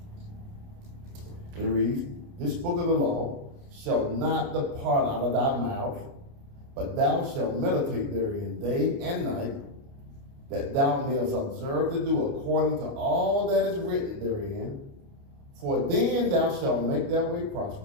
It reads, this book of the law shall not depart out of thy mouth, but thou shalt meditate therein day and night, that thou mayest observe to do according to all that is written therein. For then thou shalt make thy way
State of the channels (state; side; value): late; left; 29 ms